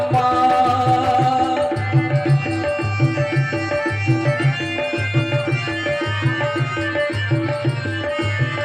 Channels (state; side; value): identical; both; correlation 1.00